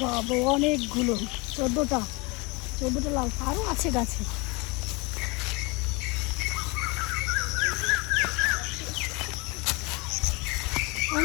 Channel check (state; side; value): quieter; right; 27.3 dB